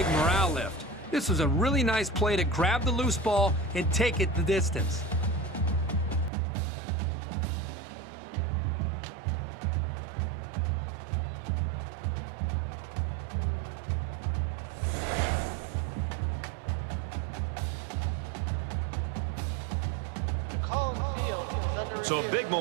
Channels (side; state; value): left; drops out; at 6.3 s